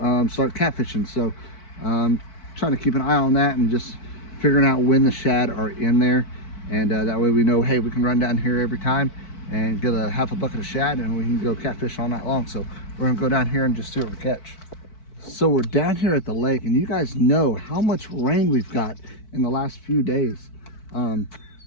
start catfishing. So trying to keep an eye on that and just figuring out when the shad are in there, and that way we know, hey, we can run down here every time and get a half a bucket of shad and we can go catfish all night long. So we're gonna go down here and just see what we catch. So we're down here at the lake, and you guys know how much rain we've got in the last few days.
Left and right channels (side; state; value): right; late; 4.5 ms